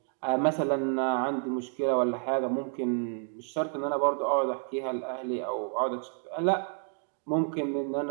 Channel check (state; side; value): silent; left; 58 dB below the other